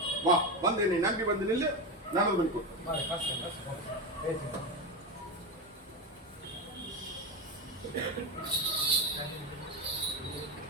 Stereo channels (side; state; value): both; normal; correlation 0.17